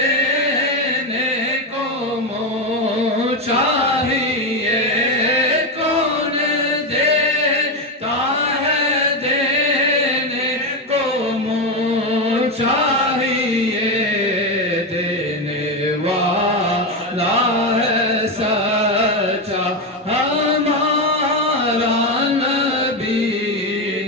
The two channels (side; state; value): both; normal; correlation 0.11